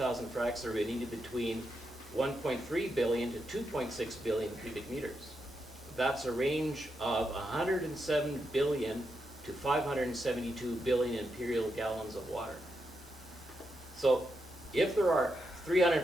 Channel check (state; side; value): normal; both; correlation 0.84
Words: fracks, there would be needed between 1.3 billion to 2.6 billion cubic meters. That's a range of 107 billion to 572 billion imperial gallons of water. So if there are